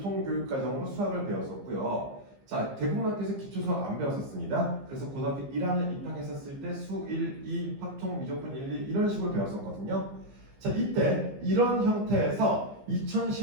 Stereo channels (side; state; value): left; late; 15 ms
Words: 수학을 배웠었고요. 자, 대부분 학교에서 기초수학 안 배웠었습니다. 그래서 고등학교 1학년 입학했었을 때 수 1, 2, 확통, 미적분 1, 2 이런 식으로 배웠었거든요. 자, 이때 이런 형태에서